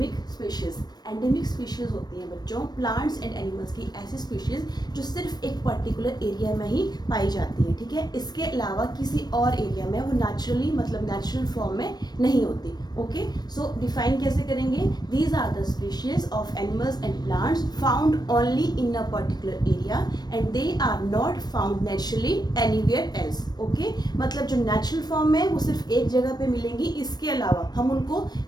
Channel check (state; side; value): late; right; 0.19 ms